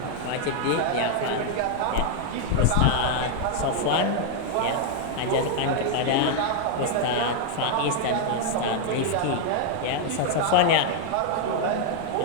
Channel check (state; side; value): different; both; correlation 0.00